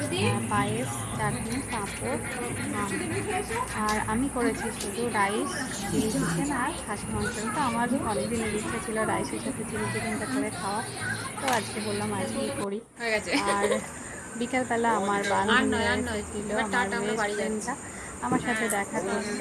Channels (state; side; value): identical; both; correlation 1.00